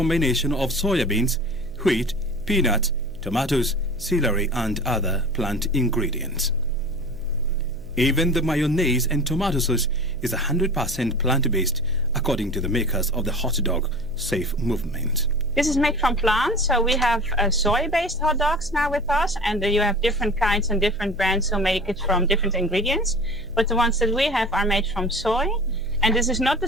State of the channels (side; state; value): right; noise; hum, 19 dB below the sound